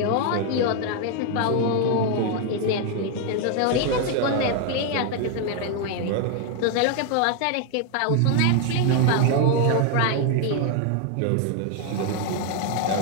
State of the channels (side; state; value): both; different; correlation 0.00